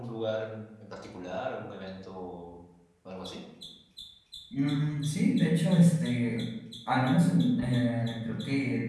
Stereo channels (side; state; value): both; identical; correlation 1.00